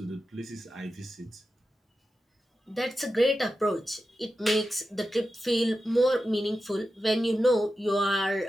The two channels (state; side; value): normal; both; correlation 0.91